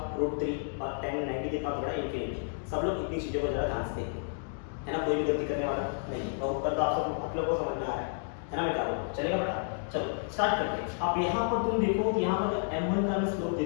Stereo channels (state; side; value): silent; right; digital silence